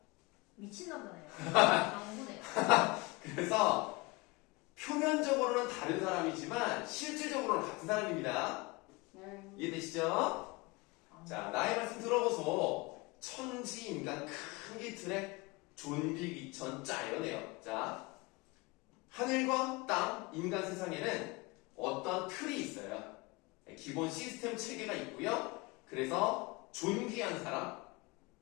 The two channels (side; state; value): right; quieter; 25.2 dB